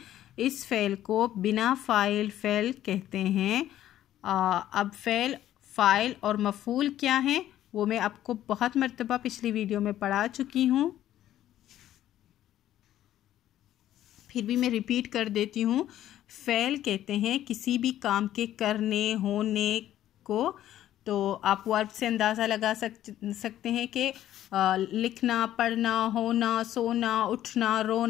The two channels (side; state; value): right; quieter; 12.5 dB